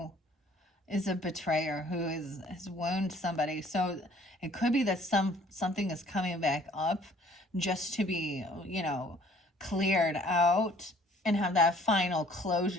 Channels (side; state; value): both; normal; correlation 0.56